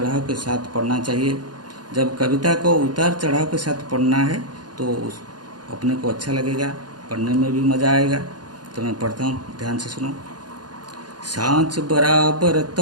के साथ पढ़ना चाहिए। जब कविता को उतार चढ़ाव के साथ पढ़ना है तो अपने को अच्छा लगेगा, पढ़ने में भी मज़ा आएगा। तो मैं पढ़ता हूँ, ध्यान से सुनो। सांच बराबर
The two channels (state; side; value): late; left; 0.70 ms